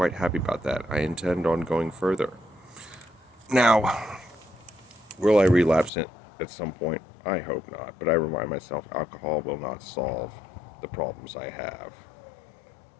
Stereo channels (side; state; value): right; drops out; at 5.9 s